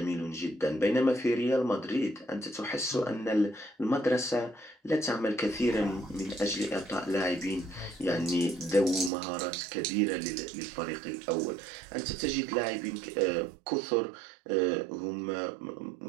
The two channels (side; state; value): left; drops out; at 9.1 s